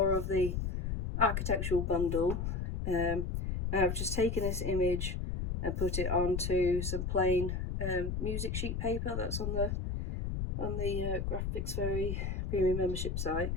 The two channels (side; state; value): left; noise; rumble, 2 dB below the sound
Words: of the architectural bundle. And I've just taken this image and put it onto some plain music sheet paper that's on the Graphics Fairy premium membership site,